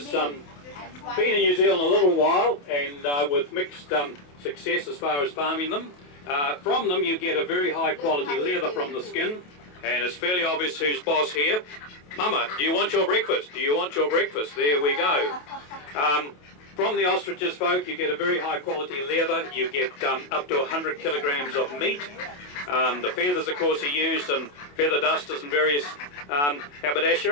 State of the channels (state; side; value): late; right; 28 ms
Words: been in New Zealand a little while, and with mixed success as far as farming them. From them you get a very high quality leather from the skin, and it's fairly obvious who's boss here. Mama, do you want your breakfast? Do you want your breakfast? There we go. From the ostriches, folk, you get a very high quality leather. You get up to 100 kilograms of meat. The feathers, of course, are used in feather dusters and various